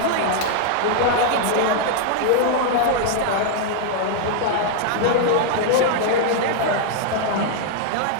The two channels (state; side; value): different; both; correlation -0.01